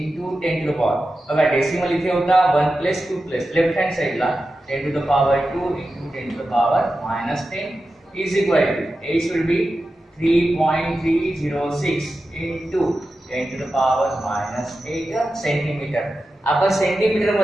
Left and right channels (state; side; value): normal; both; correlation 0.92